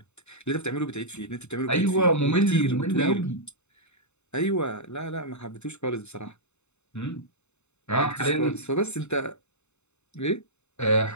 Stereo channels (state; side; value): late; right; 0.82 ms